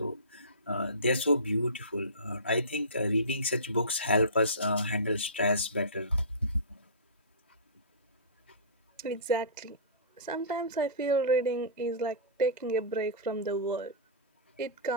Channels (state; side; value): inverted; both; correlation -0.30